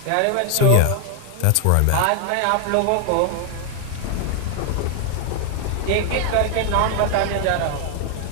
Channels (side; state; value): both; different; correlation 0.00